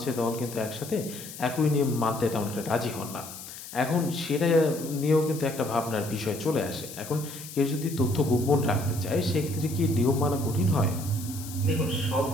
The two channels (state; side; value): noise; left; hiss, 13 dB below the sound